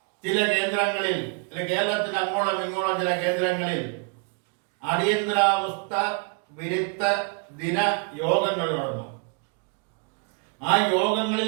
ചില കേന്ദ്രങ്ങളിൽ, കേരളത്തിന് അങ്ങോളം ഇങ്ങോളം ചില കേന്ദ്രങ്ങളിൽ അടിയന്തരാവസ്ഥ വിരുദ്ധ ദിന യോഗങ്ങൾ നടന്നു. ആ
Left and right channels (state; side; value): quieter; left; 36.8 dB